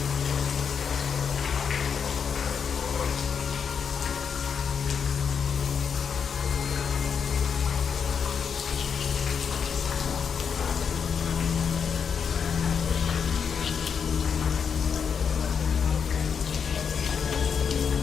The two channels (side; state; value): right; quieter; 6.7 dB